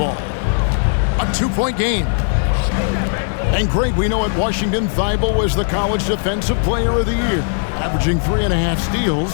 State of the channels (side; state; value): right; silent; digital silence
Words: A 2-point game. And Greg, we know at Washington, Thybulle was the college defensive player of the year, averaging 3.5